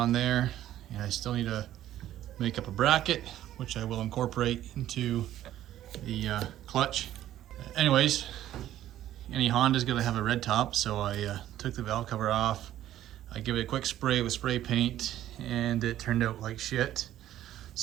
there, and I still need to make up a bracket, which I will incorporate into the clutch. Anyways, any Honda's gonna have a red top, so I took the valve cover off. I give it a quick spray with spray paint, and it turned out like shit.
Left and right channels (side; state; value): left; quieter; 12.8 dB